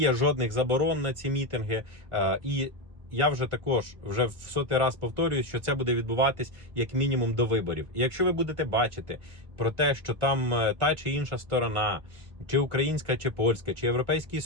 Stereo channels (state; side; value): late; left; 1.5 ms